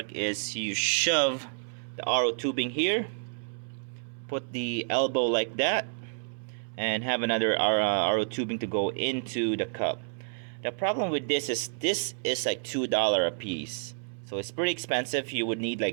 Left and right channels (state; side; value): silent; left; 58 dB below the other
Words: is you shove the RO tubing here, put the elbow like that, and have another RO tubing to go into the cup. The problem with this is like $2 a piece, so it's pretty expensive. You would need